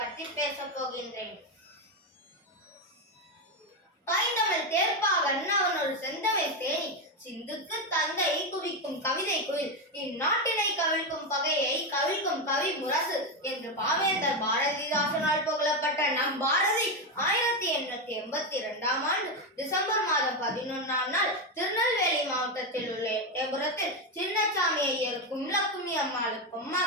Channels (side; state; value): both; normal; correlation 0.09